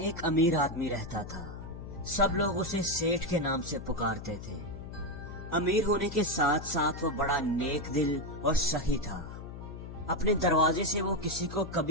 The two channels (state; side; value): noise; left; hum, 11 dB below the sound